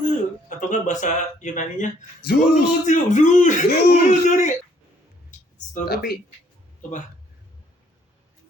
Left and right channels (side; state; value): both; normal; correlation 0.65